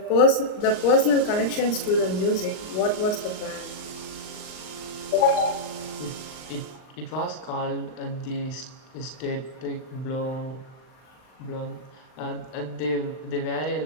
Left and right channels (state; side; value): late; right; 39 ms